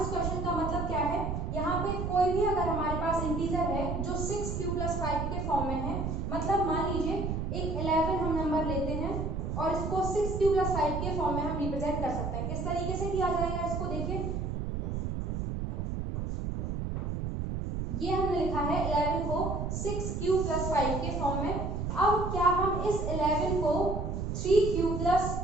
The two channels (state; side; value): noise; right; rumble, 2 dB below the sound